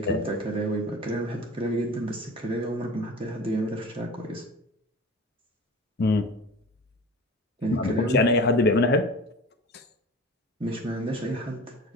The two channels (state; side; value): normal; both; correlation 0.37